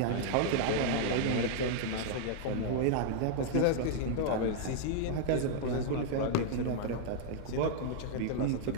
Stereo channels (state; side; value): different; both; correlation -0.01